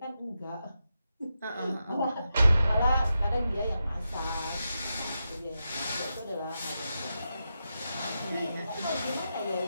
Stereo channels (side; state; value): both; inverted; correlation -0.88